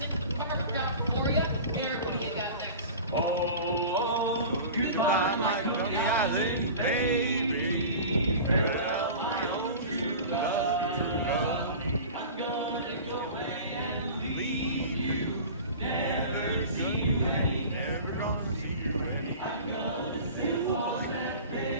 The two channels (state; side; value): inverted; both; correlation -0.37